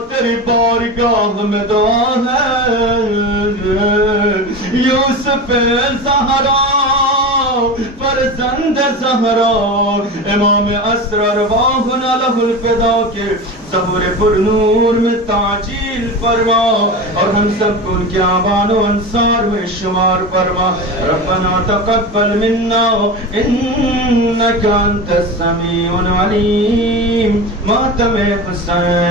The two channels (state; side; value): normal; both; correlation 0.27